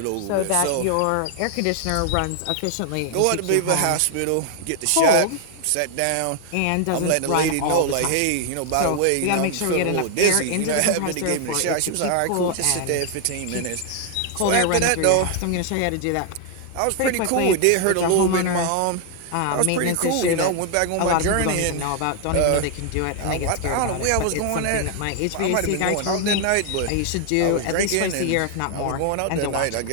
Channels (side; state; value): both; different; correlation 0.00